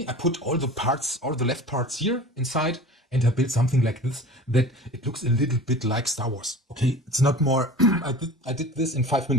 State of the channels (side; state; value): both; normal; correlation 0.39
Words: I put all the parts, all the left parts here inside, and I built something like this that it looks a little bit like Star Wars. Okay, it's not more. I did this in 5